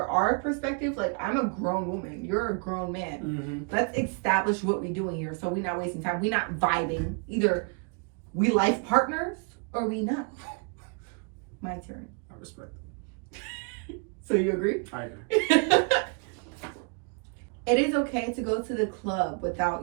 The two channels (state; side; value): quieter; left; 36.2 dB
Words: our perspective, like, I'm a grown woman. You're a grown man. Mm-hmm. Let's establish what we're doing here so we're not wasting time. We're not vibing. Either we life partners or we not. My turn. I respect it. So you agree? I agree. It is okay to go to the club without